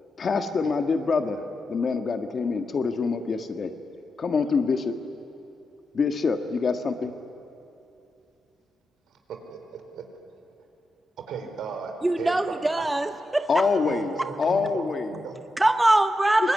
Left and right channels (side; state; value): both; normal; correlation 0.88